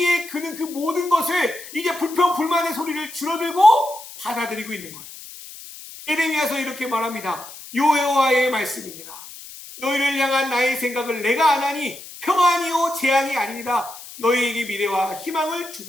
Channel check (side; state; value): left; noise; hiss, 15 dB below the sound